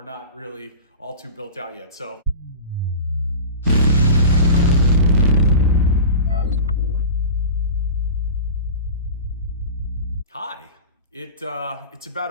not really all too built out yet. So. Hi, it's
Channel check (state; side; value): inverted; both; correlation -0.33